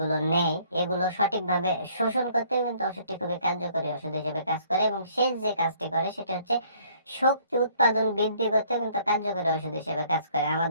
নেয় এগুলো সঠিকভাবে শোষণ করতে কিন্তু ওষুধটি খুবই কার্যকরী ওষুধ হিসেবে কাজ করে। এবং শেষ যে কাজটি করে সেটা হচ্ছে শক্তি উৎপাদন বৃদ্ধি করতে কিন্তু কার্যকরী ওষুধ হিসেবে কাজ করে।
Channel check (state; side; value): inverted; both; correlation -0.60